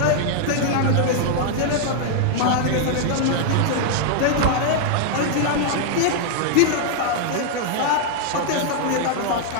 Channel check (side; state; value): both; different; correlation 0.00